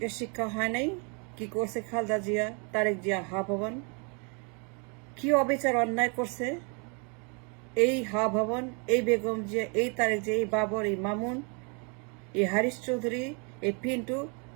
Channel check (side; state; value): left; quieter; 35.7 dB